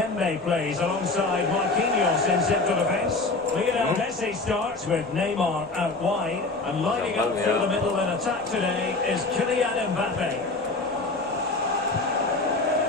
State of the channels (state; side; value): quieter; right; 3.4 dB